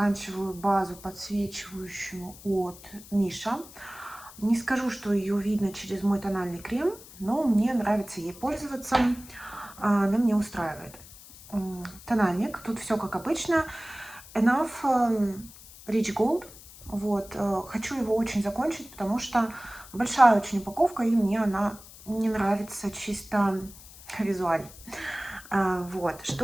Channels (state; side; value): noise; left; hiss, 19 dB below the sound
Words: базу подсвечивающую от Миша. Не скажу, что ее видно через мой тональный крем, но мне нравится ей пользоваться. Она меня устраивает. Тональник. Тут все как обычно. Enough Rich Gold. Вот. Хочу его очень закончить, потому что большая очень упаковка, и мне она не нравится чисто визуально. Вот.